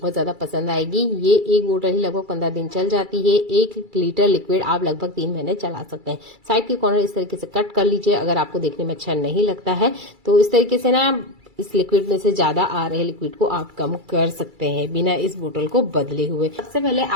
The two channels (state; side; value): late; left; 2.3 ms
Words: ज्यादा पसंद आएगी। ये एक बोतल ही लगभग 15 दिन चल जाती है। 1 लीटर लिक्विड आप लगभग 3 महीने चला सकते हैं। साइड के कॉर्नर इस तरीके से कट कर लीजिए। अगर आपको देखने में अच्छा नहीं लगता है तो इस तरीके से ना इस लिक्विड में से ज्यादा आ रहे लिक्विड को आप कम कर सकते हैं बिना इस बोतल को बदले हुए। सबसे पहले